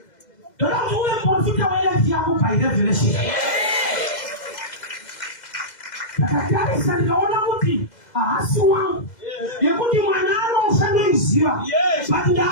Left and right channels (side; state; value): right; late; 2.0 ms